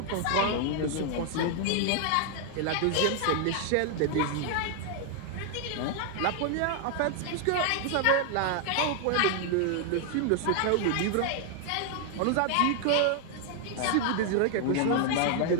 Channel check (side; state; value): both; different; correlation 0.00